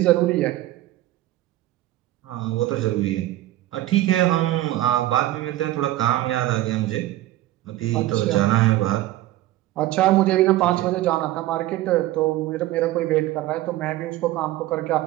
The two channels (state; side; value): quieter; left; 15.5 dB